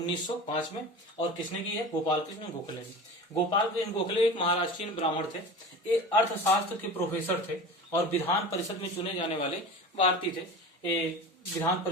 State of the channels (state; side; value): normal; both; correlation 0.33